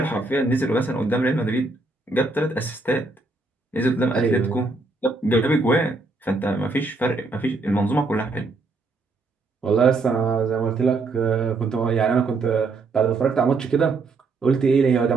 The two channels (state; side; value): quieter; left; 3.6 dB